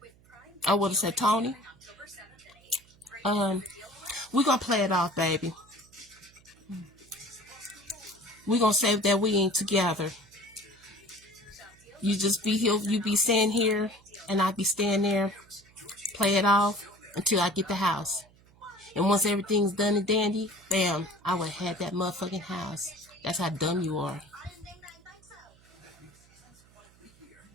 I would have said, Tony, we're going to play it off, baby. We're going to say that we ain't together. You just be here, you be staying here, and I be staying there. Play it off until I get the house. And once everything's done and dandy, bam, I would have had that motherfucking house. That's how dumb you are.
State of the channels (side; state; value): right; noise; hum, 28 dB below the sound